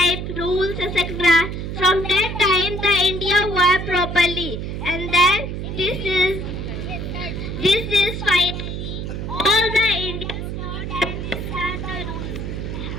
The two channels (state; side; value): noise; right; hum, 5 dB below the sound